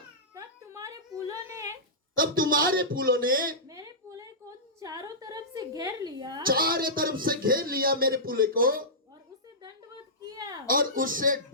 तब तुम्हारे पुलों ने मेरे पुले को चारों तरफ से घेर लिया चारों तरफ से घेर लिया मेरे पुले को, और उसे दंडवत किया। और उससे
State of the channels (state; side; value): normal; both; correlation -0.16